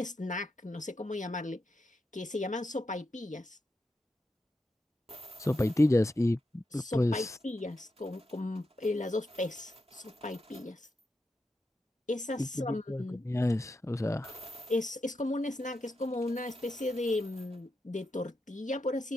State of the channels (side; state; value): both; normal; correlation 0.86